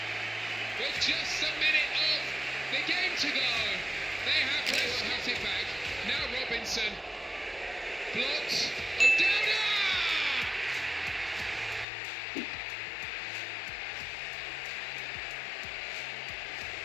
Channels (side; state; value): right; drops out; at 11.9 s